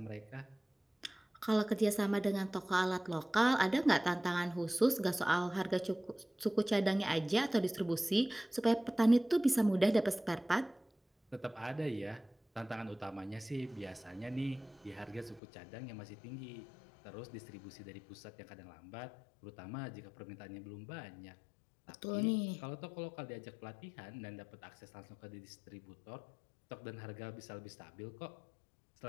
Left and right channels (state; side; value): drops out; right; at 15.4 s